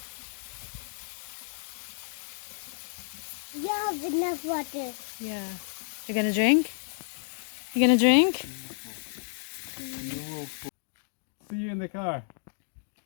You have enough water. Yeah. You're gonna drink? You gonna drink? See you in the car.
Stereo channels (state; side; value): silent; right; digital silence